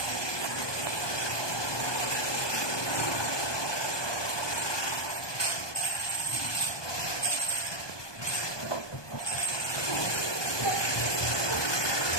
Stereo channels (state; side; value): late; right; 1.2 ms